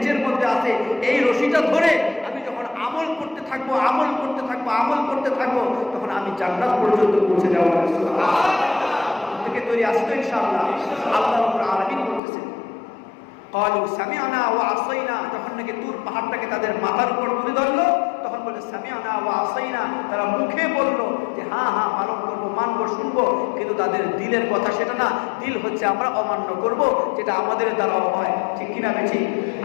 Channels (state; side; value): drops out; right; at 12.2 s